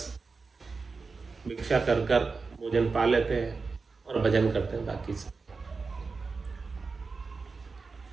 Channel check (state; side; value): quieter; left; 4.4 dB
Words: भिक्षा कर कर भोजन पा लेते हैं और भजन करते हैं बाकी से।